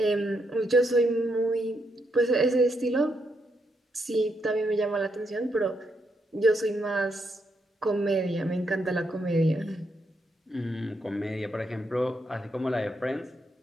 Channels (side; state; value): both; normal; correlation 0.79